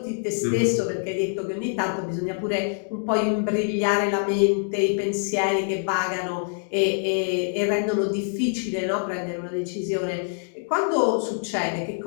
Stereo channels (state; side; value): silent; right; 62 dB below the other